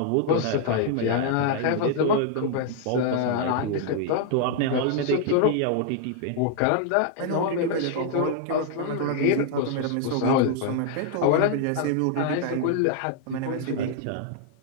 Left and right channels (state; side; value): different; both; correlation 0.00